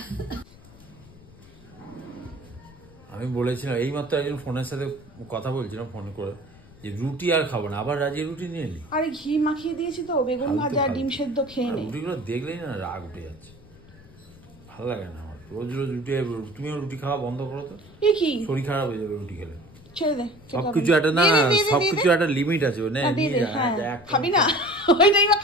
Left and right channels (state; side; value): noise; left; rumble, 22 dB below the sound